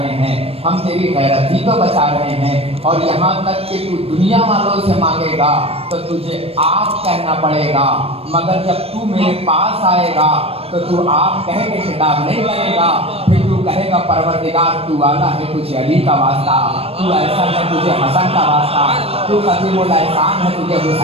ہیں، ہم تیری غیرت ہی تو بچا رہے ہیں۔ اور یہاں تک کہ تو دنیا والوں سے مانگے گا تو تجھے آپ کہنا پڑے گا، مگر جب تو میرے پاس آئے گا تو تو آپ کہہ کے خطاب نہیں کرے گا، پھر تو کہے گا پروردگار تو والا ہے تجھے علی کا واسطہ، تو ایسا ہے تجھے حسن کا واسطہ، تو قدیم الاحسان ہے تجھے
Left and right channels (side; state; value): left; late; 0.28 ms